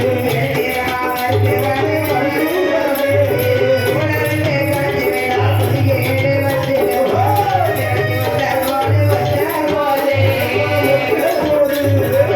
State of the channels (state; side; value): identical; both; correlation 1.00